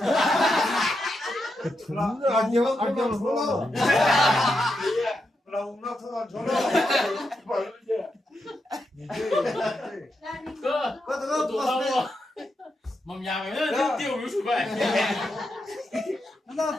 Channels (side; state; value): both; normal; correlation 0.85